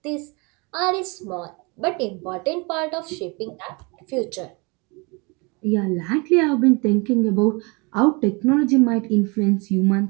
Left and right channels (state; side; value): quieter; left; 29.1 dB